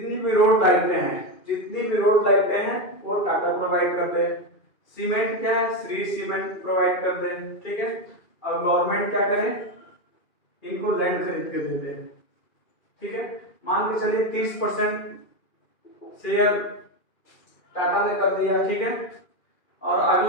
भी रोड लाइटें हैं, जितनी भी रोड लाइटें हैं वो टाटा प्रोवाइड कर दे। सीमेंट क्या है? श्री सीमेंट प्रोवाइड कर दे। ठीक है, और गवर्नमेंट क्या करे? इनको लैंड खरीद के दे दे। ठीक है, मान के चलिए 30% शेयर टाटा ने कर दिया। ठीक है, और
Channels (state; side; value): late; right; 2.4 ms